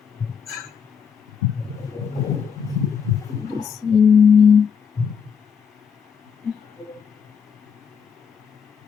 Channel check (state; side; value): quieter; right; 6.8 dB